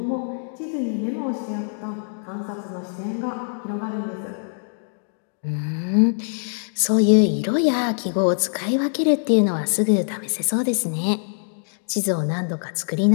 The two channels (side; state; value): right; silent; digital silence